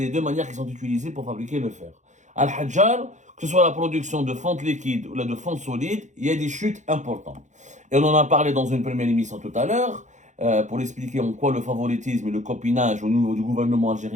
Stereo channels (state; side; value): late; left; 0.35 ms